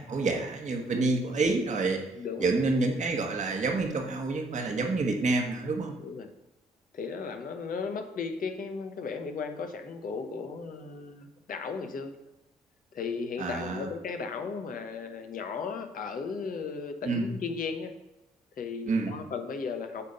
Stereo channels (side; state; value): both; normal; correlation 0.62